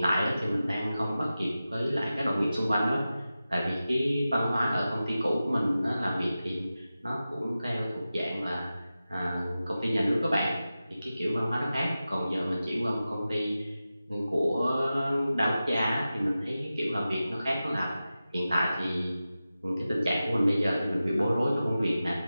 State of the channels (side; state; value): both; inverted; correlation -0.94